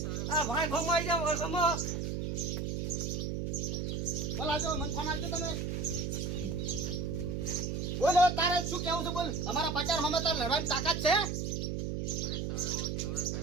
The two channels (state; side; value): noise; right; hum, 2 dB below the sound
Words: આ ભાઈ હમાઈ જા હમો બોલા જો મન ફોન આવજો તમે. બોલ હવે તારે શું કેવું છે બોલ. અમારા 50 હમે તાર લડવાની તાકાત છે.